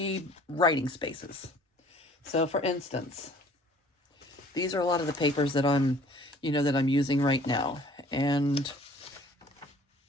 writing spaces. So for instance, these are a lot of the papers that I'm using right now. And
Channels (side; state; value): both; normal; correlation 0.53